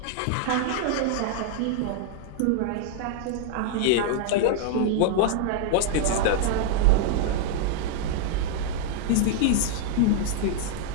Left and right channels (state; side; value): different; both; correlation -0.01